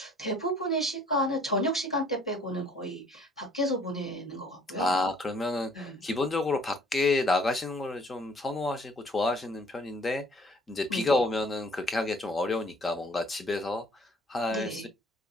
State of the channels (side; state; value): both; normal; correlation 0.58